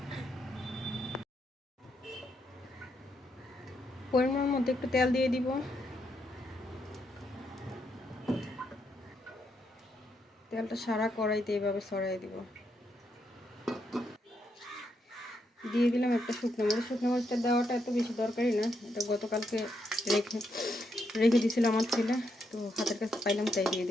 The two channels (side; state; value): both; normal; correlation 0.79